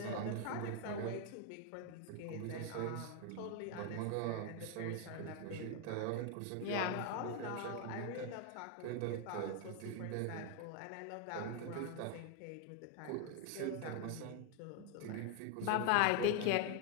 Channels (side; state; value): both; different; correlation 0.00